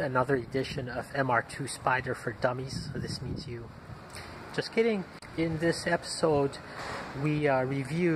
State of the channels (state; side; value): identical; both; correlation 1.00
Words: another edition of MR2 Spyder for Dummies. So this means you. Just kidding. In this episode, we